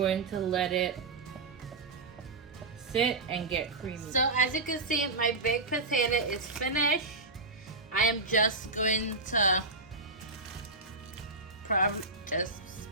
to let it sit and get creamy. So as you can see, my baked potato is finished. I am just going to probably just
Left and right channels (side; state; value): left; quieter; 3.3 dB